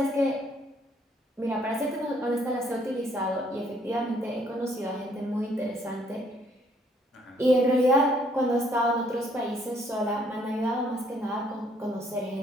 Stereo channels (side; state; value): both; normal; correlation 0.66